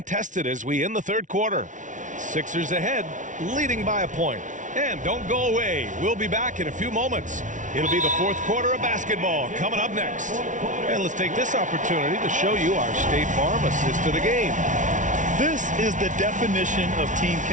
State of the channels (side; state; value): left; late; 0.37 ms